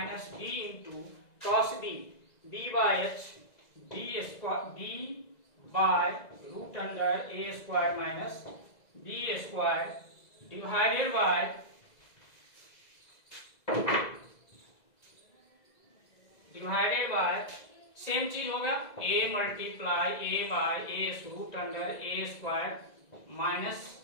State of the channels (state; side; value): late; right; 2.0 ms